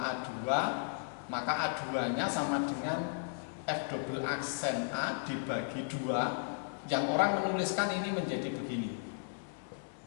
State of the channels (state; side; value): silent; right; digital silence